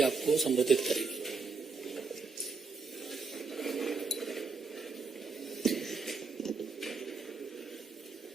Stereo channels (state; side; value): quieter; left; 4.6 dB